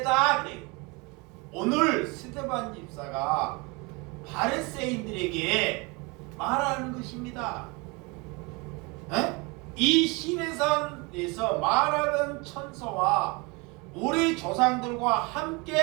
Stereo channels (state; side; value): quieter; left; 27.9 dB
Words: 그래. 오늘 스데반 집사가 바리새인들에게 말하는 것입니다. 이 시내산에서 말하는 천사와 우리 조상들과